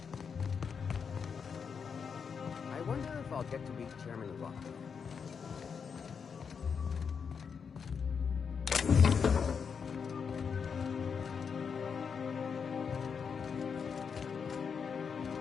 wonder if I'll get to meet Chairman Rock.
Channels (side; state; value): right; quieter; 6.3 dB